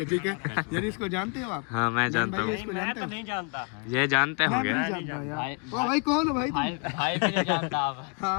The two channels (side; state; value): right; quieter; 35.3 dB